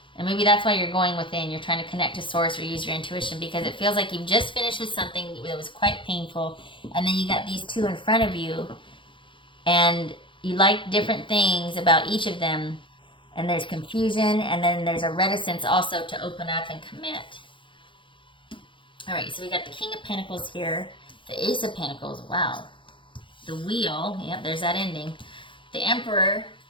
and maybe that's why you're going within. You're trying to connect to source or use your intuition, because it feels like you've just finished with something that was quite painful, and then you got these two in front of you, and you like different things about each of them, and there's confusion, and then there's a reticence also to open up and commit. All right, so we got the King of Pentacles here, the Ace of Pentacles, wow, the Wheel, yep, there's that ending, the Emperor,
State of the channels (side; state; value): right; late; 0.24 ms